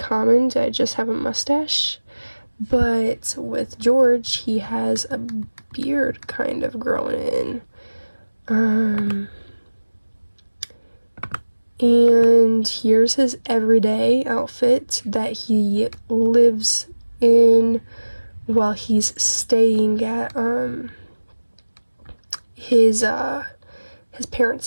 to just have a mustache, but with George he has a beard kind of growing in. And here's his everyday outfit that he lives in while he's staying at his parents'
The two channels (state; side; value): inverted; both; correlation -1.00